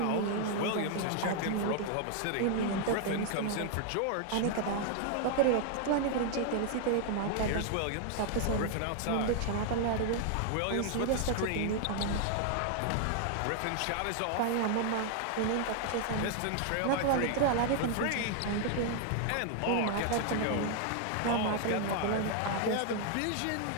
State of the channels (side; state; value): both; different; correlation 0.00